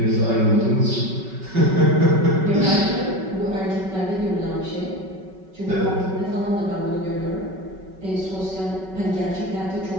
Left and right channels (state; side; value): late; left; 5.3 ms